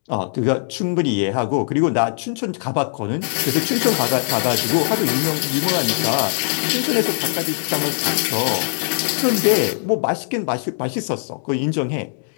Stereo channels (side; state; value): right; silent; digital silence